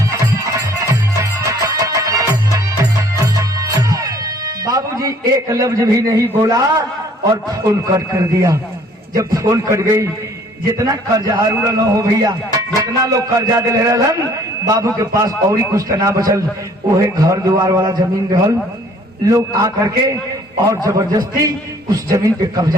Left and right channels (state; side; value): normal; both; correlation 0.57